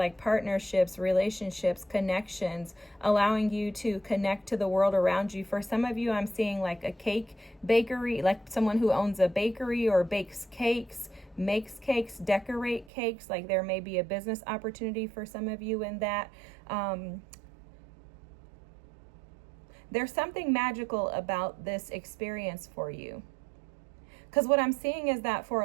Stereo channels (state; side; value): drops out; left; at 12.9 s